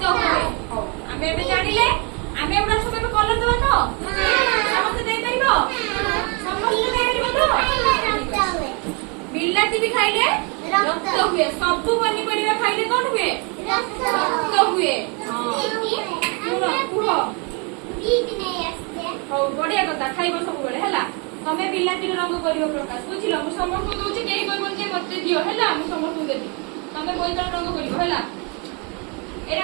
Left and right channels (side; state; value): left; quieter; 33.2 dB